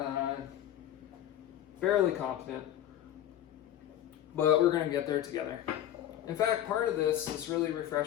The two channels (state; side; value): quieter; right; 11.8 dB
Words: fairly confident, but we're going to get there together. In fact, part of this is really